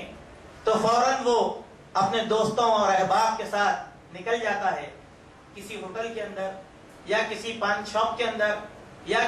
تو فوراً وہ اپنے دوستوں اور احباب کے ساتھ نکل جاتا ہے, کسی ہوٹل کے اندر یا کسی پان شاپ کے اندر یا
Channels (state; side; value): identical; both; correlation 1.00